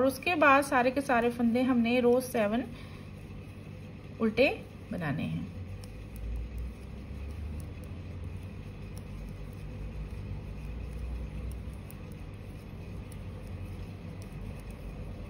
उसके बाद सारे के सारे फंदे हमने रो 7 उल्टे बनाने हैं।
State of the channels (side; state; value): both; identical; correlation 1.00